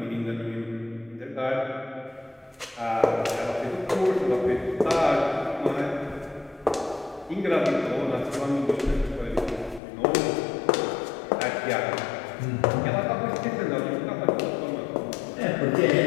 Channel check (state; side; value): drops out; right; at 9.8 s